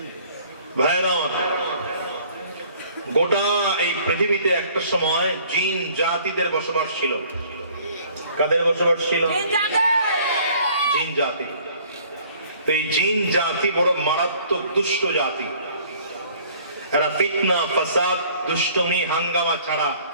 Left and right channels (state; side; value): inverted; both; correlation -0.55